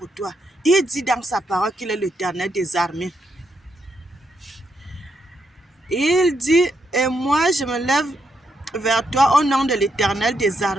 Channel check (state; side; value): normal; both; correlation 0.79